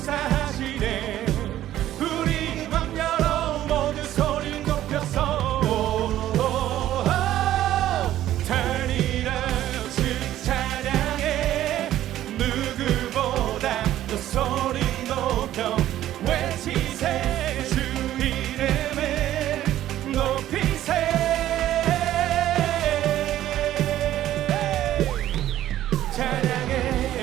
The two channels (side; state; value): left; quieter; 13.0 dB